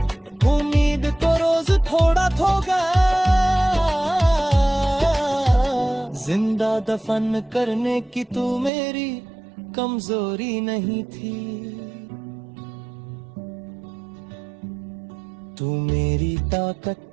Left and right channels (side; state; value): left; drops out; at 8.7 s